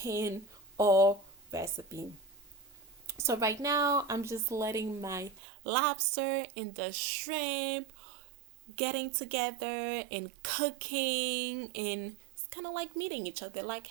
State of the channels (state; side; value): drops out; left; at 5.4 s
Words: all recipe. So right now I'm just letting my lobster and the shrimp getting together and cooking, and it's kind of like meeting each other, like,